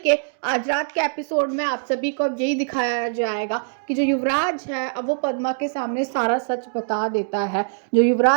के आज रात के episode में आप सभी को यही दिखाया जाएगा कि जो युवराज है अब वो पद्मा के सामने सारा सच बता देता है। जो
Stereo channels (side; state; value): left; silent; digital silence